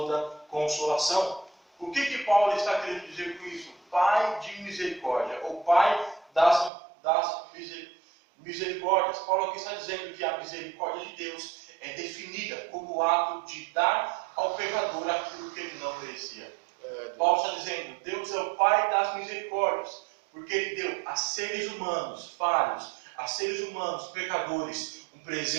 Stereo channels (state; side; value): drops out; left; at 6.7 s